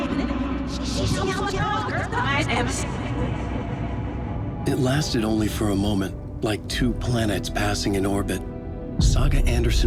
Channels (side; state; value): both; identical; correlation 1.00